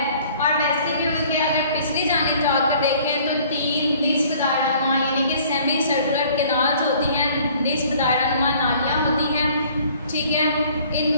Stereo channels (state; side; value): inverted; both; correlation -0.55